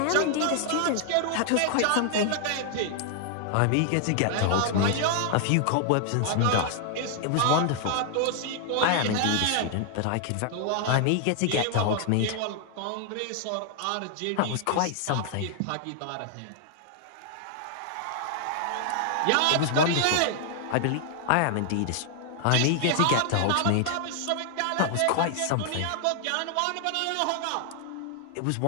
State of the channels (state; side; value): different; both; correlation 0.00